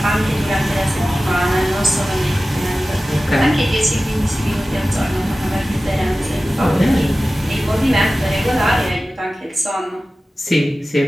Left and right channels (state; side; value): normal; both; correlation 0.96